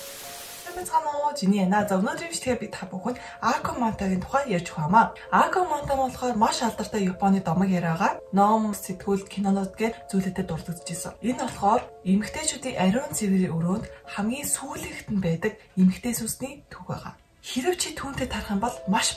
Жиний яна. За өнөөдрийн бичлэгээ би та бүхэнд Акомантагийн тухай ярьж өгье. Акоманта болохоор маш алдартай Японы домог яриагаа ном, сэтгүүл, кинонууд гээд зүйлүүдэд дурддаж исэн. Энэ болохоор эмэгтэйчүүдийн ариун цэврийн өрөөнд хамгийн сүүлэгт нь байдаг эмэгтэй сүсний төв байгаа. Хэрв чи түүнтэй тарах юм бол маш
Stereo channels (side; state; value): both; identical; correlation 1.00